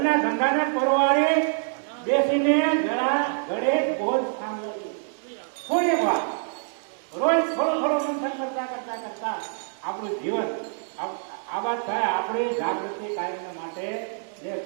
ધંધાને પરવારે બેસીને જરા ઘડે ભોજ સાંભળવી થોડી વાર. રોજ થોડો થોડો મંથન કરતા કરતા કરતા આપણું જીવન આબાદ થાય. આપણી જાગૃતિ કાયમ માટે જે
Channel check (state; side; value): silent; left; digital silence